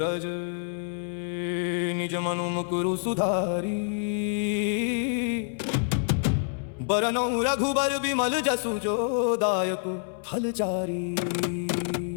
रज निज मनु मुकुरु सुधारी बरनौ रघुबर बिमल जसु जो दायक फलचारी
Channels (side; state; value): right; silent; 60 dB below the other